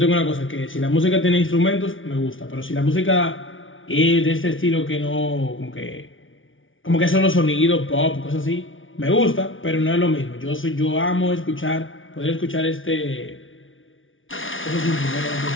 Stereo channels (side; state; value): right; late; 0.57 ms